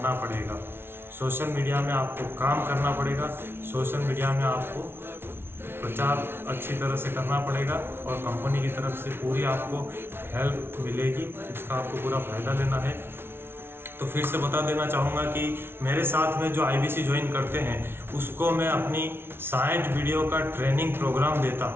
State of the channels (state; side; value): late; left; 0.11 ms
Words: पड़ेगा, सोशल मीडिया में आपको काम करना पड़ेगा, सोशल मीडिया में आपको प्रचार अच्छी तरह से करना पड़ेगा और कंपनी की तरफ से पूरी आपको हेल्प मिलेगी, इसका आपको पूरा फ़ायदा लेना है। तो फिर से बता देना चाहूँगा कि मेरे साथ में जो आईबीसी ज्वाइन करते हैं उसको मैं अपनी 60 वीडियो का ट्रेनिंग प्रोग्राम देता